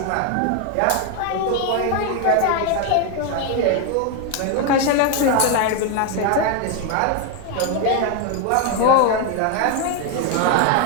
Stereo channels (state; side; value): different; both; correlation 0.01